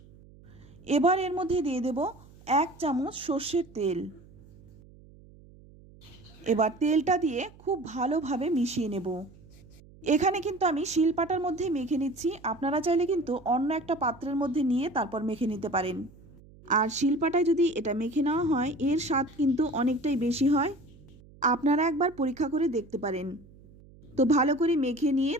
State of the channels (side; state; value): right; noise; hum, 23 dB below the sound